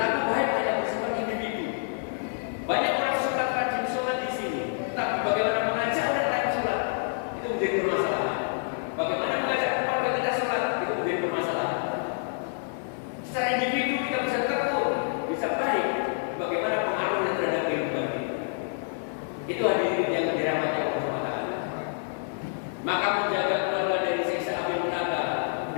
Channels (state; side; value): silent; right; 60 dB below the other